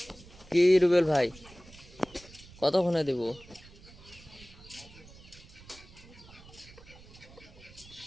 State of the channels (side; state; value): right; noise; rumble, 21 dB below the sound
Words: কি রুবেল ভাই, কতক্ষণে দিব?